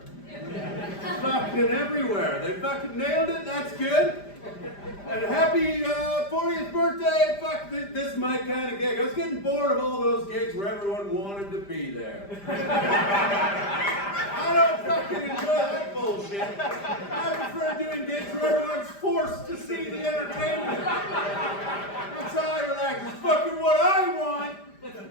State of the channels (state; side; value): late; right; 5.0 ms